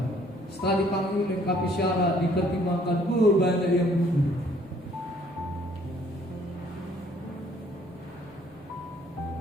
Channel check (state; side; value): normal; both; correlation 0.61